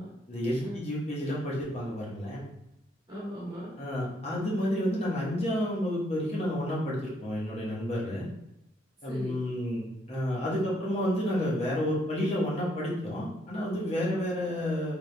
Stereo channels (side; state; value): both; normal; correlation 0.71